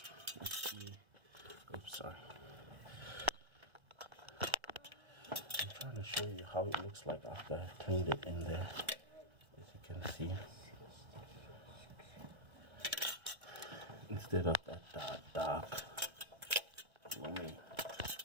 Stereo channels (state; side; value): late; left; 1.3 ms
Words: Let's see. Oops, sorry. I'm trying to show you how it looks like after I've cleaned it in there. As you can see, instead of that dark gloomy.